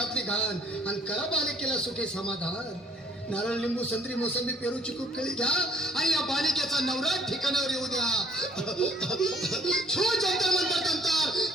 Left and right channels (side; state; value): both; normal; correlation 0.60